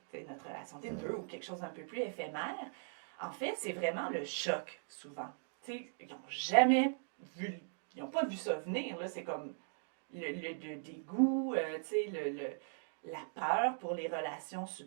notre relation de peu ou quelque chose d'un peu plus éphémère, en fait, c'est vraiment le choc, souvent. T'sais, ils n'ont jamais vu, ils n'ont pas vu ça venir. Là, c'est comme le dégoût, la peur pour les relations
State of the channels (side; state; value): left; silent; digital silence